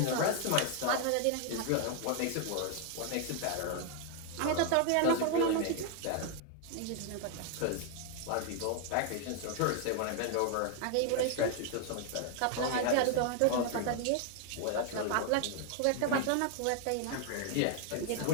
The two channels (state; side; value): different; both; correlation 0.00